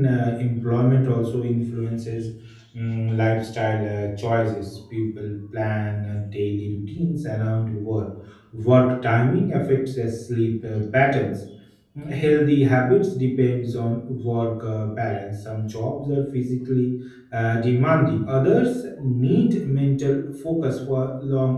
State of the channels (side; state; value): both; identical; correlation 1.00